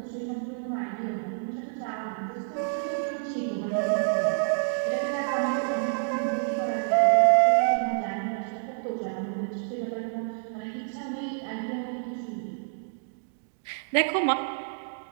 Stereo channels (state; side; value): silent; left; digital silence